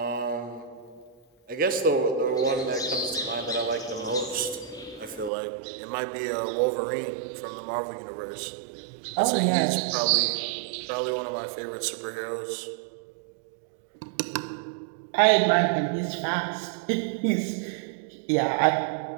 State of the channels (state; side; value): drops out; left; at 5.3 s